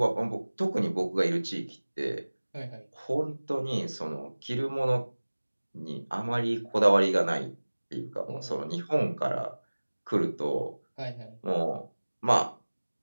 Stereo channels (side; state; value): both; inverted; correlation -1.00